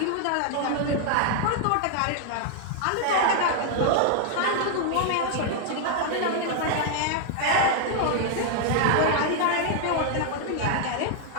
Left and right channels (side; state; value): both; different; correlation 0.00